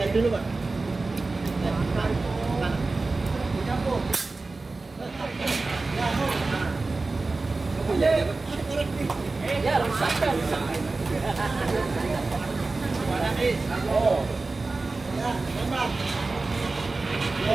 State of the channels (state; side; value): quieter; left; 3.6 dB